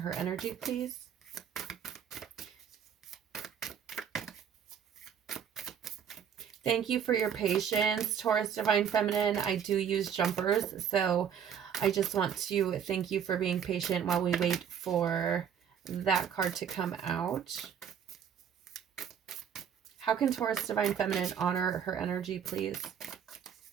energy, please? Thank you for your patience, Taurus Divine Feminine. I do use jumpers, so I just want to thank you for being patient while we wait for that card to come out. How can Taurus Divine Feminine honor her energy, please?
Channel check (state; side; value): quieter; left; 8.1 dB